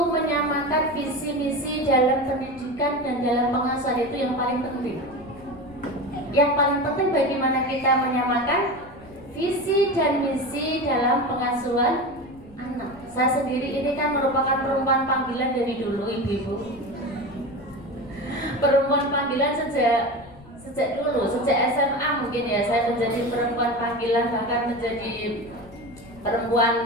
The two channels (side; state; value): left; noise; rumble, 22 dB below the sound